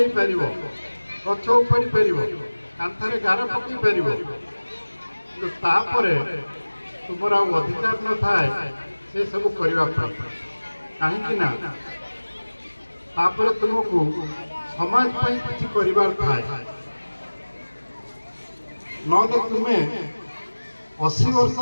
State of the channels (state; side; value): inverted; both; correlation -1.00